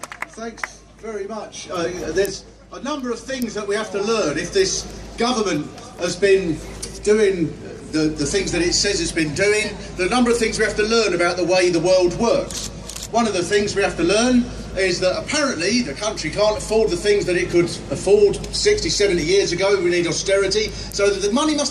Thanks very much. There's a number of things that we have to learn if this government has been doing the things that it says it's been doing. There are a number of things we have to learn about the way the world works. One of the things we have to learn is that apparently the country can't afford the things that it could afford 60, 70 years ago. We need austerity, so that the money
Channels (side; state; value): both; identical; correlation 1.00